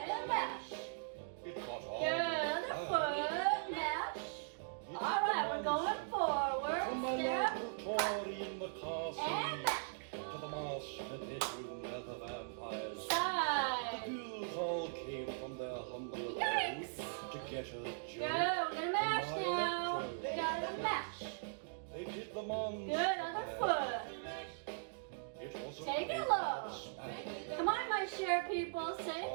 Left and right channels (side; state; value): left; silent; digital silence